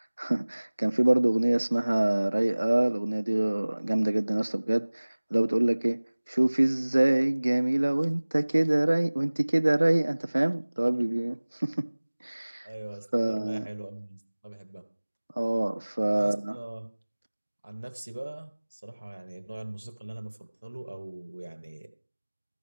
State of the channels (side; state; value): both; inverted; correlation -1.00